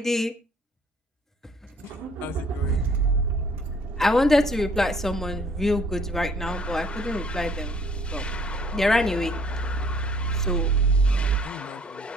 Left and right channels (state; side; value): normal; both; correlation 0.60